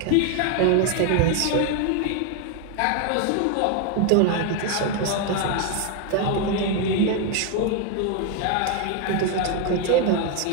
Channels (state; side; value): different; both; correlation 0.01